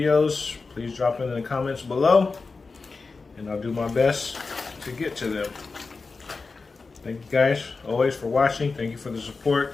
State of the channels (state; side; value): quieter; right; 4.2 dB